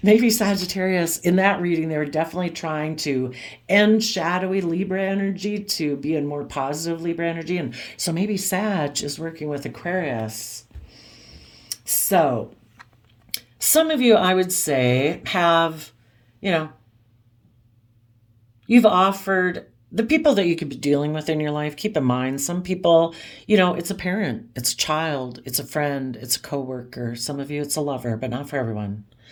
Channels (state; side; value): identical; both; correlation 1.00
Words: Maybe Sagittarius, in that reading, they were definitely trying to end shadowy Libra energy to be in more positive Libra energy. And so maybe Sag is working with Aquarius. So, some of you, I would say, have, you've offered the people that you could be dealing with in your life. Keep in mind, some people, it's a parent, it's a child, it's a friend, it's a coworker. Some of you, it's a lover, but not for everyone.